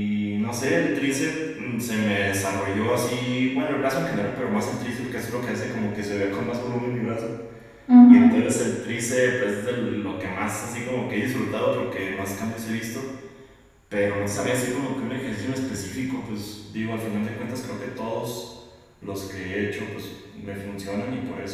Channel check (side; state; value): both; identical; correlation 1.00